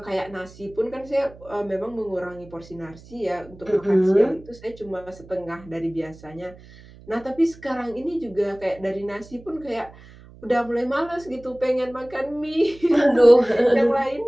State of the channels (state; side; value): noise; right; hum, 21 dB below the sound